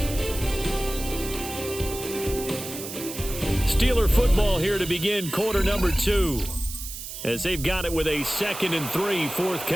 Steeler football here to begin quarter number 2 as they've got it with a 2nd and 3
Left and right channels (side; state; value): right; noise; hiss, 9 dB below the sound